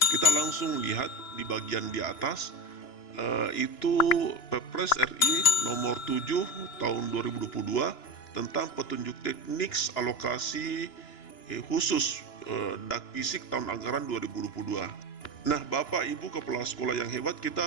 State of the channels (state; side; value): late; right; 2.9 ms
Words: kita langsung lihat di bagian di atas itu Perpres RI nomor 7 tahun 2022 tentang petunjuk teknik alokasi khusus DAK Fisik tahun anggaran 2022. Nah, Bapak Ibu kepala sekolah yang hebat,